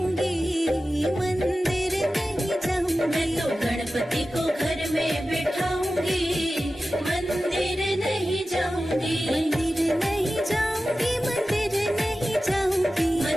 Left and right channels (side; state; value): both; normal; correlation 0.94